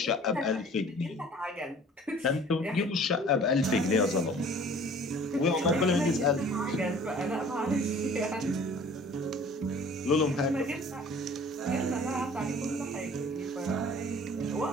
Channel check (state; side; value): normal; both; correlation 0.49